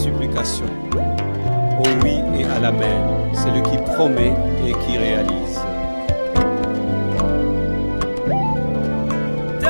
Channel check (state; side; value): inverted; both; correlation -1.00